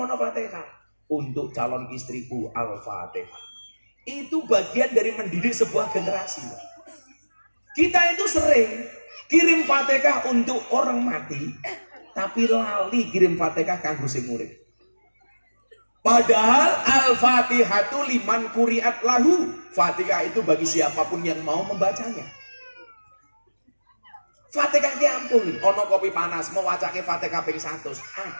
Fatihah untuk calon istriku Al-Fatihah. Itu bagian dari mendidik sebuah generasi. Kita itu sering kirim Fatihah untuk orang mati, tapi lali kirim Fatihah kanggo sing urip. Padahal Al-Fatihatu liman kuriat lahu. Fatihah itu bagi siapapun yang mau membacanya. Fatihah ki ampun, ono kopi panas mau wacake Fatihah ping 100,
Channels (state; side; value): inverted; both; correlation -1.00